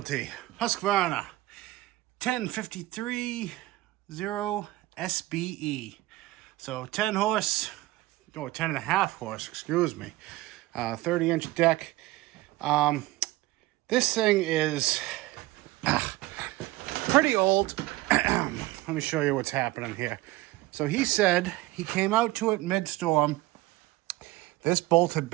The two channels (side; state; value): left; quieter; 18.5 dB